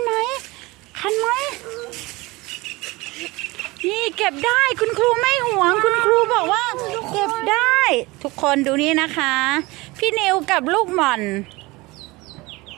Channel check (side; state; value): left; quieter; 22.4 dB